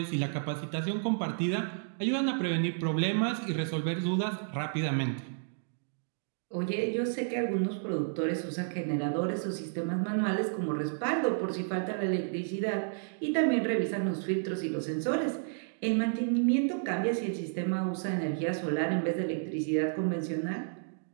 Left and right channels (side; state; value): left; silent; digital silence